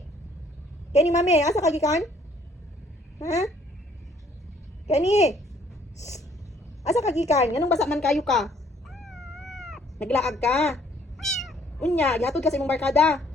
Kenny, mami, asa kagikan? Ha? Kenny? Asa kagikan? Anong basa man kayo ka? Naglaag ka? Unya, gihatod ka sa imong barkada?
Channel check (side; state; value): both; normal; correlation 0.62